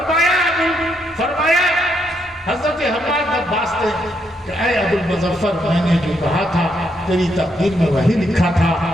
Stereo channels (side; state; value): both; normal; correlation 0.77